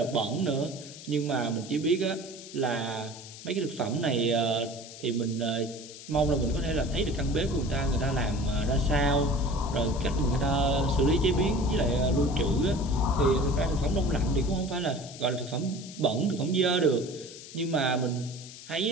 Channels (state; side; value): noise; left; hiss, 15 dB below the sound